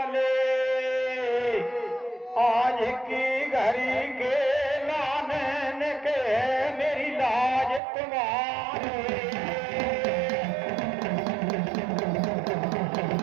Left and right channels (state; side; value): drops out; left; at 7.8 s